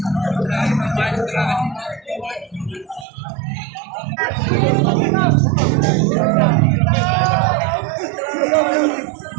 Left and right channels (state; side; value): drops out; left; at 3.1 s